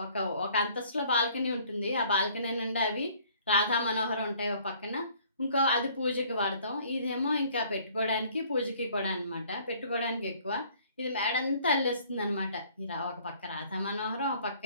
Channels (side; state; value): both; inverted; correlation -0.57